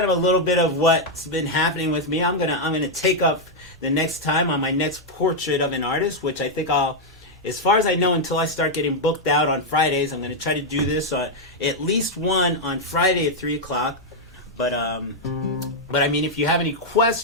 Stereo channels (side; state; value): both; normal; correlation -0.01